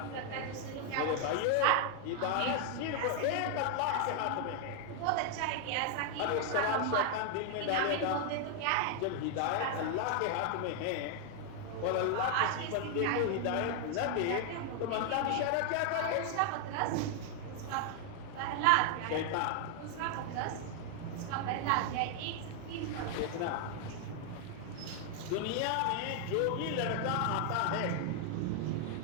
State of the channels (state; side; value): different; both; correlation 0.00